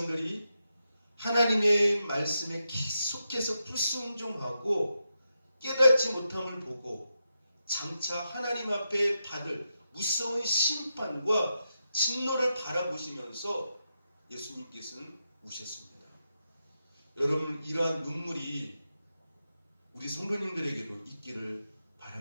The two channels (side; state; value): both; inverted; correlation -0.86